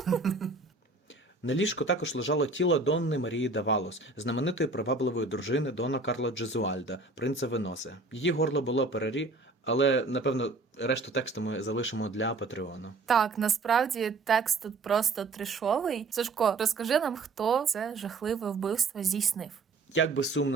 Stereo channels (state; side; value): quieter; left; 3.6 dB